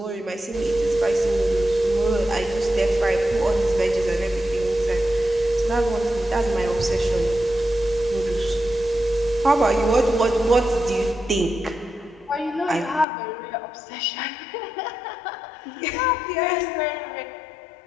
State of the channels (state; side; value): drops out; right; at 13.1 s